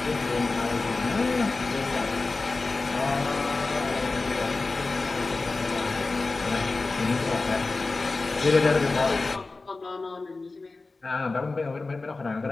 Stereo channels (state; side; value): quieter; right; 3.6 dB